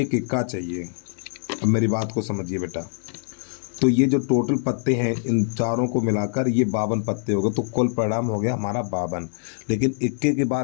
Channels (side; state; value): right; silent; digital silence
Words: इक्का चाहिए। अब मेरी बात को समझिए बेटा, तो ये जो टोटल पत्ते हैं इन चारों को मिलाकर ये 52 पत्ते हो गए। तो कुल परिणाम हो गया हमारा 52। लेकिन इक्के की